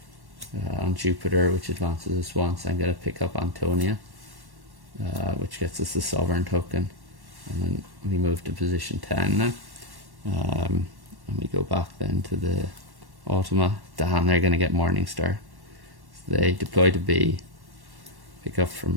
on Jupiter, which advances us once. I'm going to pick up Antonia, which gets us the Sovereign token, and then we move to position 10 now, and we go back then to the Automa. Damn, they're going to get Morningstar. So they deploy to B, pick up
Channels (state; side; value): late; left; 1.1 ms